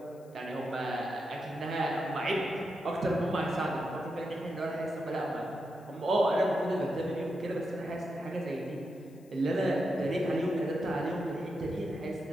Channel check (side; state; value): left; noise; hiss, 29 dB below the sound